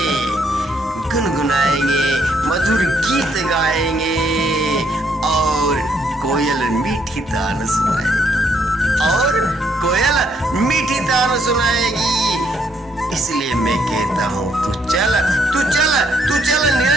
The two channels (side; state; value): both; normal; correlation 0.71